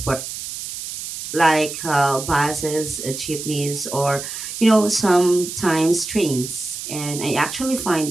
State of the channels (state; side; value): noise; right; hiss, 8 dB below the sound